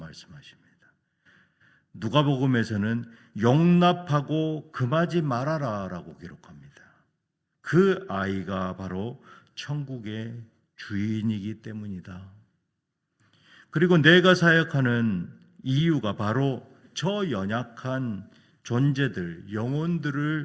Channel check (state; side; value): identical; both; correlation 1.00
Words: 누가복음에서는 용납하고 금하지 말아라 라고 기록합니다. 그 아이가 바로 천국의 주인이기 때문이다. 그리고 내가 사역하는 이유가 바로 저 연약한 존재들,